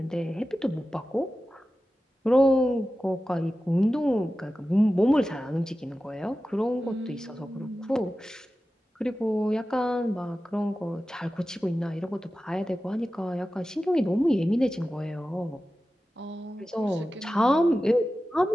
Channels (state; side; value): normal; both; correlation 0.94